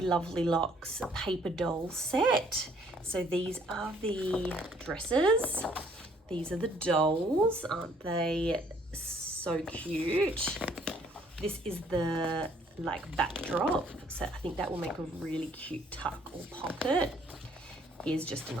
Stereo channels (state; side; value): normal; both; correlation 0.62